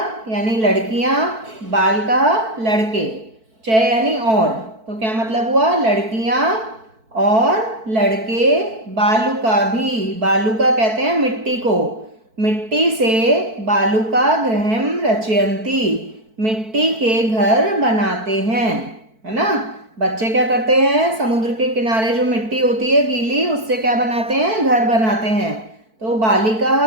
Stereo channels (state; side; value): late; left; 4.5 ms